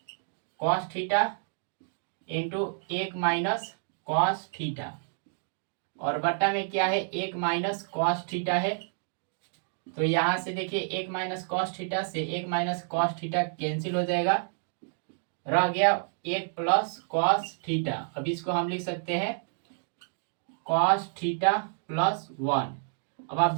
cos theta into 1 minus cos theta, और बट्टा में क्या है 1 माइनस कॉस थीटा है। तो यहां से देखिए 1 माइनस कॉस थीटा से 1 माइनस कॉस थीटा कैंसिल हो जाएगा, रह गया 1 प्लस कॉस थीटा। अब इसको हम लिख सकते हैं कॉस थीटा प्लस 1। अब आप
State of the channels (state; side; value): silent; left; digital silence